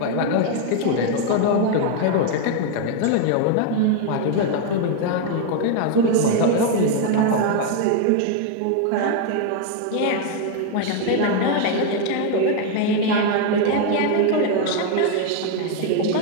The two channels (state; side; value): different; both; correlation 0.00